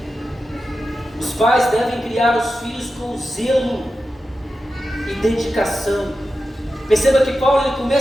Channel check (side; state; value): both; normal; correlation 0.91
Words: pais devem criar os filhos com zelo e dedicação. Perceba que Paulo ele